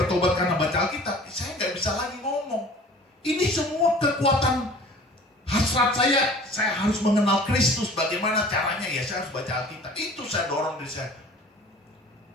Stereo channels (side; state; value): both; normal; correlation 0.46